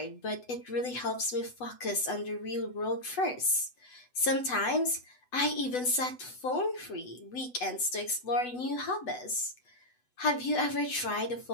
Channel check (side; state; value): right; late; 8.0 ms